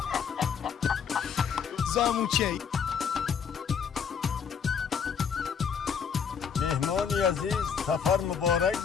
زاموچه. مهمانی عزیز سفر مبارک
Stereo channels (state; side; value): quieter; right; 6.9 dB